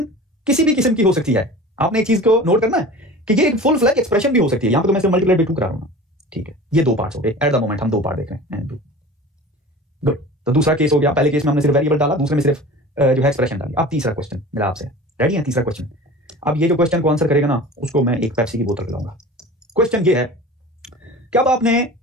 किसी भी किस्म की हो सकती है। आपने एक चीज को नोट करना है कि ये एक फुल फ्लैग एक्सप्रेशन भी हो सकती है। यहां पे तो मैं सिर्फ मल्टीप्लाई बाय 2 करा रहा हूं। ठीक है, ये 2 पार्ट्स हो गए। एट द मोमेंट हम 2 पार्ट देख रहे हैं। गुड। तो दूसरा केस हो गया। पहले केस में हमने सिर्फ वेरिएबल डाला, दूसरे में सिर्फ जो है एक्सप्रेशन डाली। अब तीसरा क्वेश्चन मेरा आपसे, रेडी है? तीसरा क्वेश्चन। अब ये जो क्वेश्चन को आंसर करेगा ना, उसको मैं एक पेप्सी की बोतल पिलाऊंगा। क्वेश्चन ये है कि अब आपने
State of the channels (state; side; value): normal; both; correlation 0.38